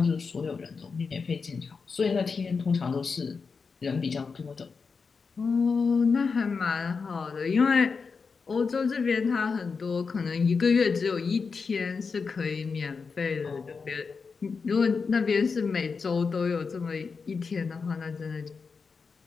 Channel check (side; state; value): right; quieter; 5.1 dB